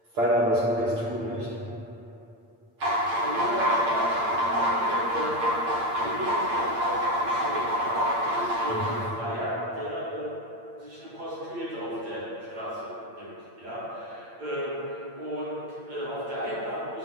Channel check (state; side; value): late; left; 8.7 ms